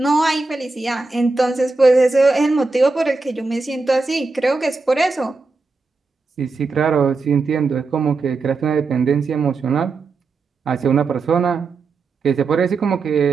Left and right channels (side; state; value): left; quieter; 3.9 dB